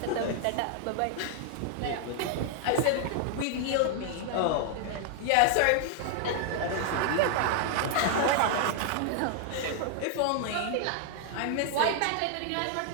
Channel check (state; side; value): different; both; correlation 0.00